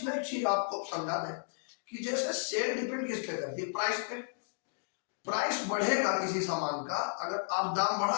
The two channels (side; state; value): right; silent; digital silence